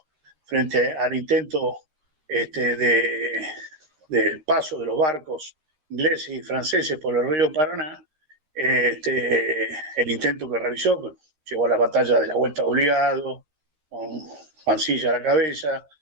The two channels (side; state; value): left; late; 13 ms